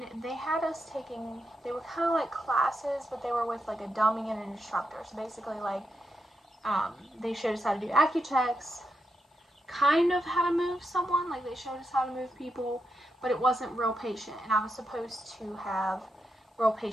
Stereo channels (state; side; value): normal; both; correlation 0.85